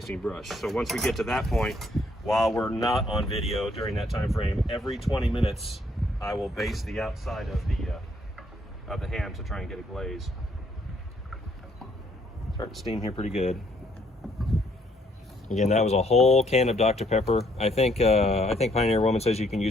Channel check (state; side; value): normal; both; correlation 0.68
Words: brush. So once we get to that point, while we're not on video during that time frame, every 20 minutes I will baste the outside of the ham to try and get a glaze. Start to steam here pretty good. Again, that was a whole can of Dr. Pepper. I think Pioneer Woman says you can